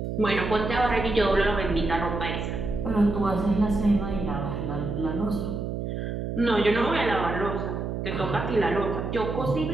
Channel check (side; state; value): right; noise; hum, 4 dB below the sound